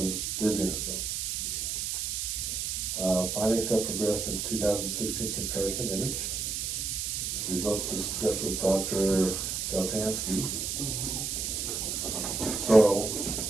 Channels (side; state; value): right; noise; hiss, 2 dB below the sound